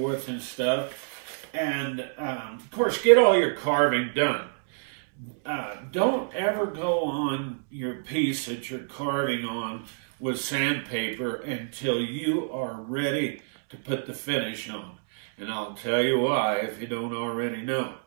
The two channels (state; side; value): silent; left; 60 dB below the other